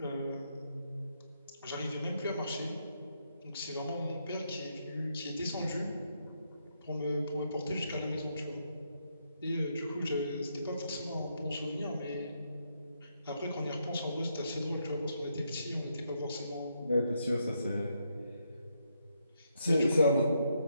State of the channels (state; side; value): inverted; both; correlation -0.78